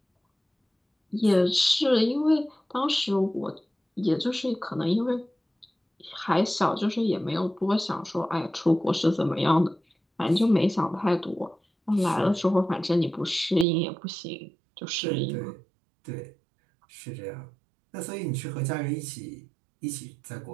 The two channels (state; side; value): drops out; left; at 13.7 s